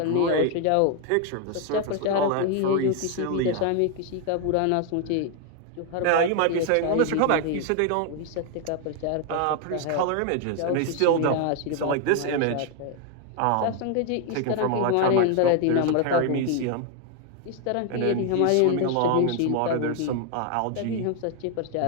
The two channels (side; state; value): both; different; correlation 0.01